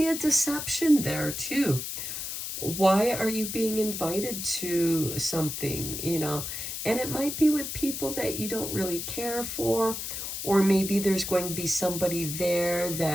a deception there too. Why are you being invited to something, And it might be with people that you don't really care for, or maybe there's going to be somebody there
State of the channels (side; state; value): left; noise; hiss, 5 dB below the sound